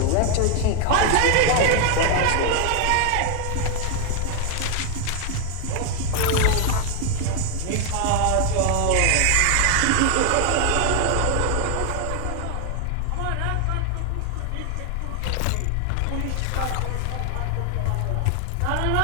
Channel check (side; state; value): both; different; correlation 0.00